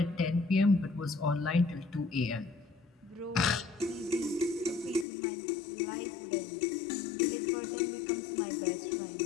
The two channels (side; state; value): right; drops out; at 5.1 s